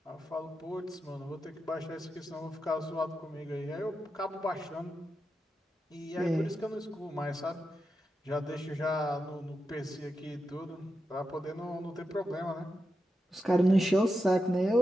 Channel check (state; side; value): normal; both; correlation 0.88